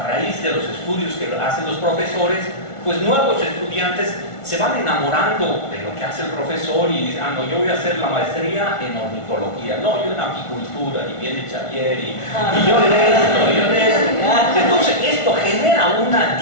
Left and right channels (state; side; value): late; right; 1.4 ms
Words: raíz de los estudios que hacen los profesores, pues nuevos estudiantes se van enamorando de lo que hace el profesor y dicen, no, yo voy a hacer la maestría en ornitología, no, yo en apicultura, y viene Xavier, y yo en esto, y yo en esto. Entonces esto genera una